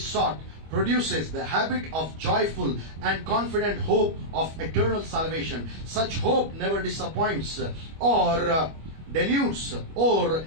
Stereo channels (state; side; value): late; left; 25 ms